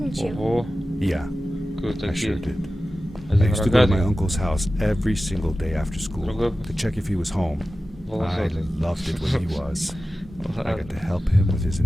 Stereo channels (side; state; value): both; normal; correlation 0.94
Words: you? Ого. Yeah, Кто I sure такие? did. I Один used to go to my рогатый, uncle's house every single day after school Другой to check if he was home. I волосатый. loved it when he was. I got Ладно, to help him with his